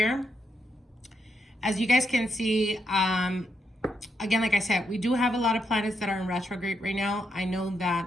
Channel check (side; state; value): both; normal; correlation 0.80